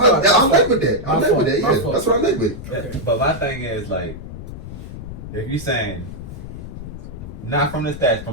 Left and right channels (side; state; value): left; noise; rumble, 11 dB below the sound